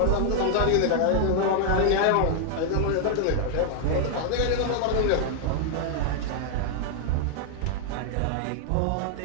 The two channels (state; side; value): different; both; correlation -0.01